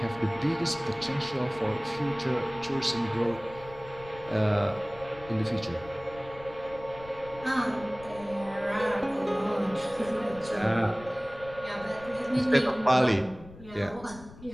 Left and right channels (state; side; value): noise; left; rumble, 18 dB below the sound